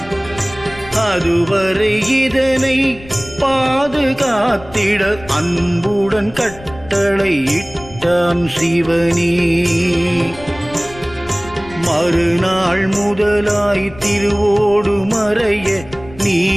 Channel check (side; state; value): left; noise; rumble, 19 dB below the sound